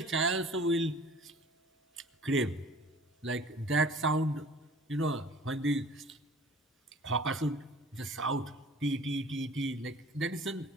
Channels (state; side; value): normal; both; correlation 0.47